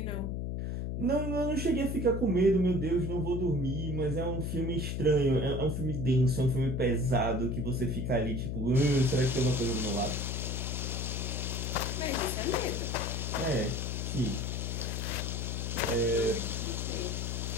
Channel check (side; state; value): left; noise; hum, 2 dB below the sound